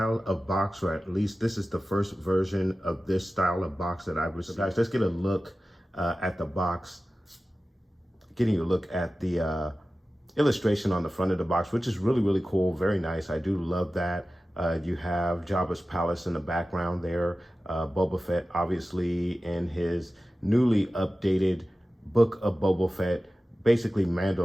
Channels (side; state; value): both; normal; correlation 0.95